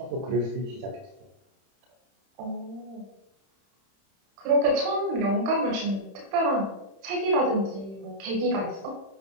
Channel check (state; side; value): late; left; 31 ms